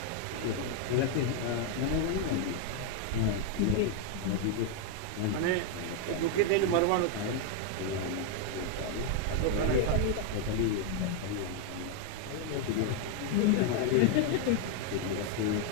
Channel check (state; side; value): different; both; correlation 0.00